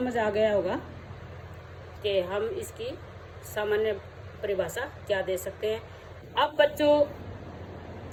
आ गया होगा कि हम इसकी सामान्य परिभाषा क्या दे सकते हैं। अब बच्चों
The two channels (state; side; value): identical; both; correlation 1.00